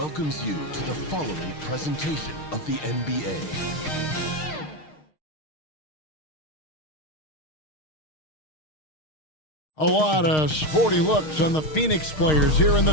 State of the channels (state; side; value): late; right; 6.5 ms